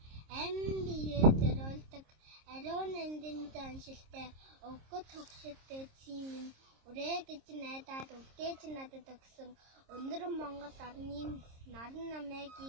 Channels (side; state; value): left; late; 26 ms